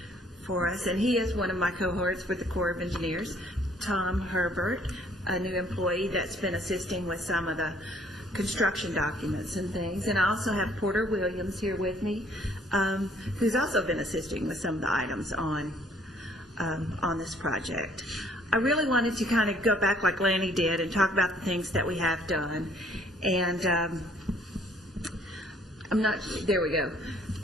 for us, and he is one of my cohorts with the Corps of Engineers, Tom Herbert, a new employee that's been assisting with some of the construction documents and things. And I also have Porter Williams here with me, who's also been assisting with some of the items on this project. I really wanted to kind of go back like Lanny did and talk about the things that we have done. And there we go.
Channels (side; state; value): both; normal; correlation 0.61